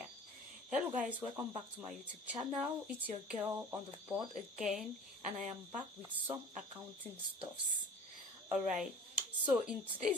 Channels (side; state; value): both; normal; correlation 0.43